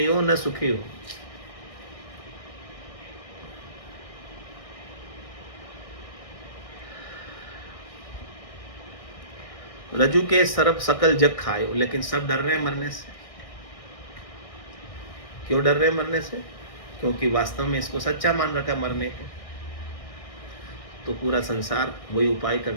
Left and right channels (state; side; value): late; right; 1.6 ms